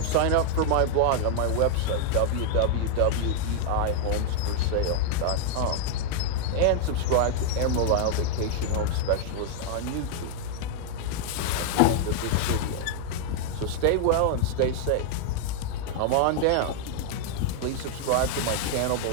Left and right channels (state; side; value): different; both; correlation -0.01